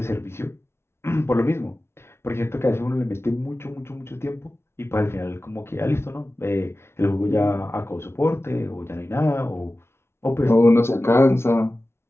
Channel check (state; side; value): late; right; 0.12 ms